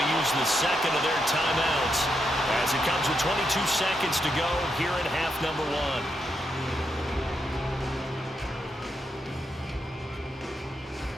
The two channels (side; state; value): both; normal; correlation 0.82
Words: to use the second of their timeouts as it comes with 22 seconds to go here in half number 1.